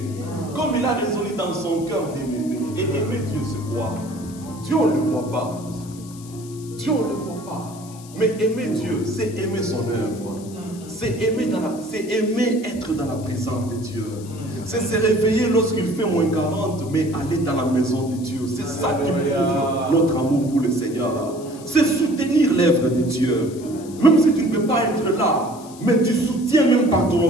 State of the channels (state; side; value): noise; left; hiss, 20 dB below the sound